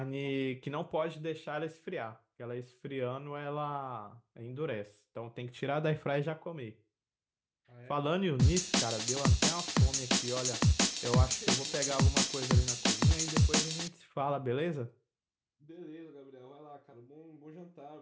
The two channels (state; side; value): identical; both; correlation 1.00